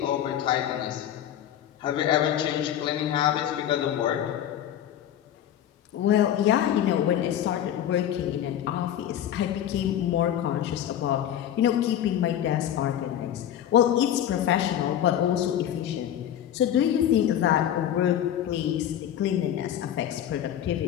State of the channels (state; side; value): quieter; right; 10.7 dB